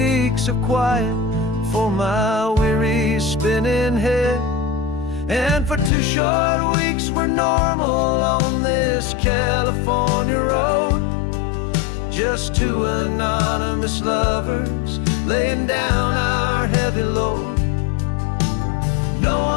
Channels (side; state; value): right; drops out; at 5.9 s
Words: of quiet for my weary spinning head. And for 2 short weeks we're normal on this California road, just 2 anonymous lovers laying down our heavy load. No